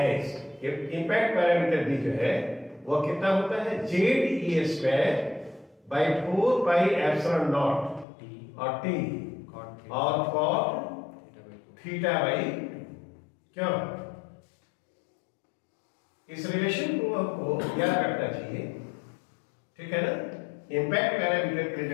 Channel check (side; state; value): right; drops out; at 8.1 s